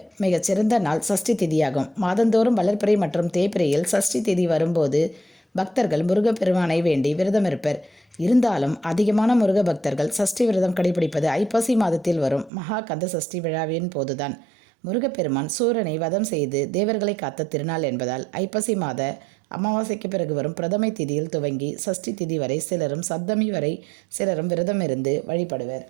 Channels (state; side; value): drops out; left; at 12.5 s